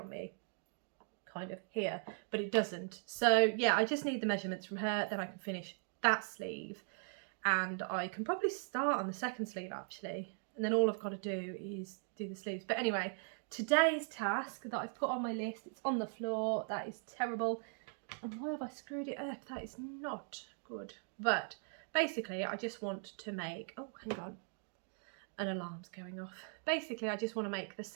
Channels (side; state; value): left; silent; 52 dB below the other